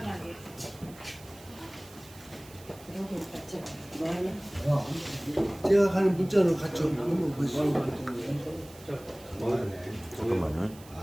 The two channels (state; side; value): noise; right; hiss, 21 dB below the sound